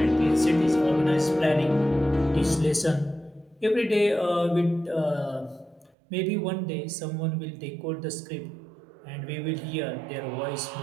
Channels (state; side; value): drops out; left; at 6.0 s